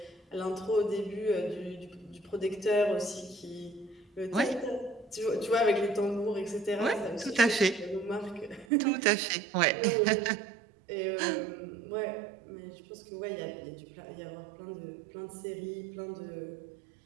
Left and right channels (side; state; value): left; drops out; at 8.7 s